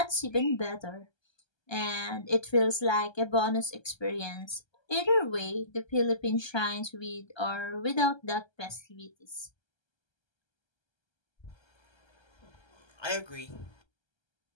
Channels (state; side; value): late; right; 1.3 ms